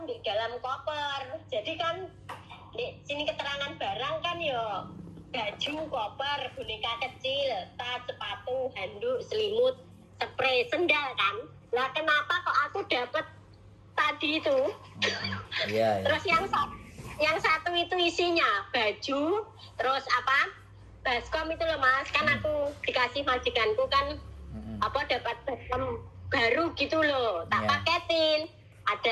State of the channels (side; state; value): both; identical; correlation 1.00